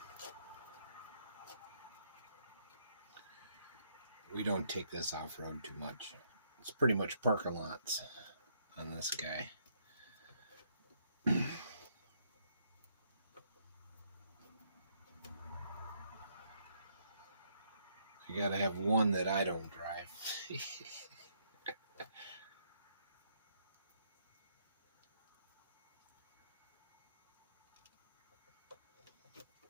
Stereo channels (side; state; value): both; inverted; correlation -0.73